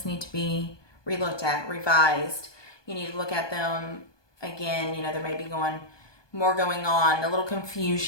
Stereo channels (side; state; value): right; late; 1.2 ms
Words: need to be relooked at, revised. You need to look at them again. There may be more going on, a little